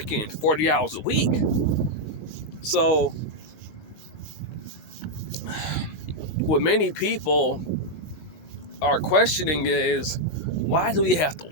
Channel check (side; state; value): right; late; 19 ms